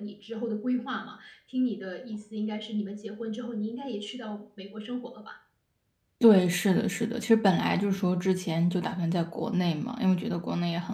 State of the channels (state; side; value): identical; both; correlation 1.00